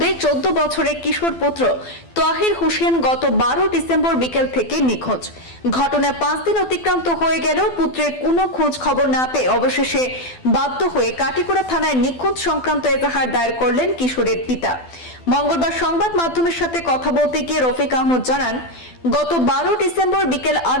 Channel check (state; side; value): late; right; 12 ms